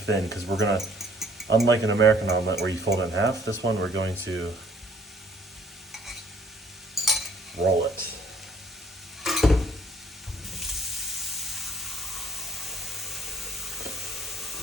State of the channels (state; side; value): normal; both; correlation 0.60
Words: because we're gonna, unlike an American omelet where you fold it in half, this one we're going to roll it.